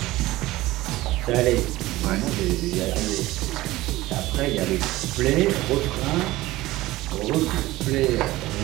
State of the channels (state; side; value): quieter; left; 17.8 dB